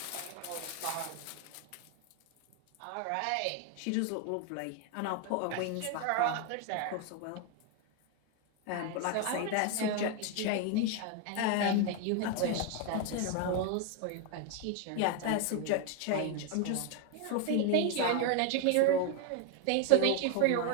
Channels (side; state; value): both; different; correlation 0.01